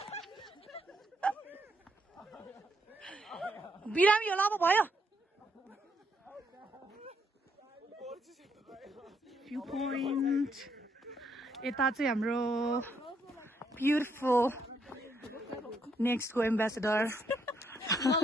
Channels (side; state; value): both; normal; correlation 0.74